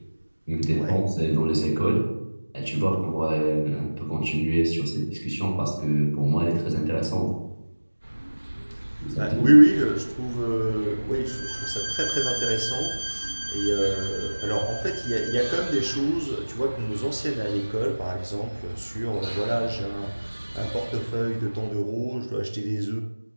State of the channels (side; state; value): both; inverted; correlation -1.00